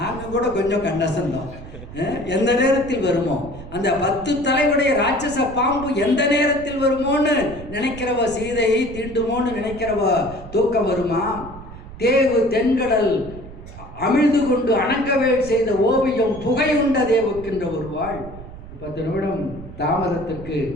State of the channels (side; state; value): right; noise; rumble, 14 dB below the sound